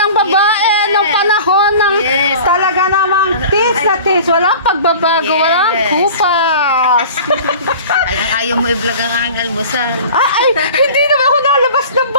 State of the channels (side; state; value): both; inverted; correlation -0.41